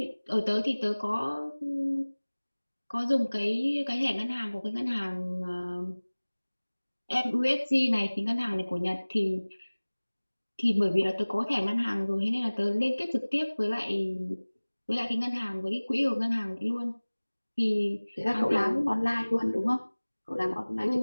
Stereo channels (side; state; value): both; inverted; correlation -1.00